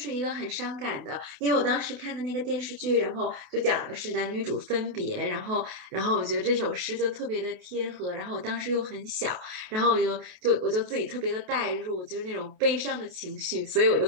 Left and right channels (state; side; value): late; left; 28 ms